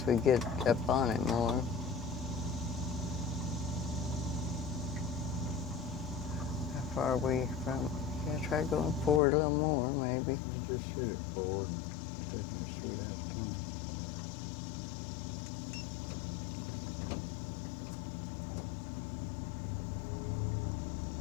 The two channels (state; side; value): drops out; right; at 9.2 s